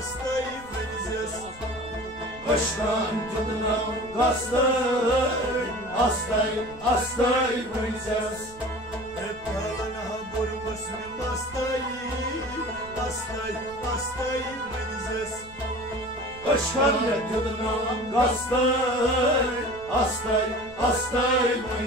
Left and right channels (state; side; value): noise; right; rumble, 21 dB below the sound